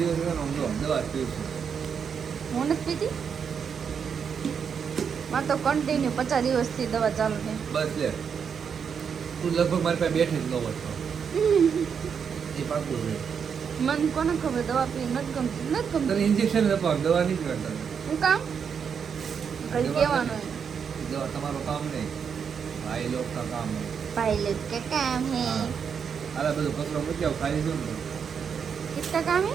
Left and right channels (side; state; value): left; quieter; 6.8 dB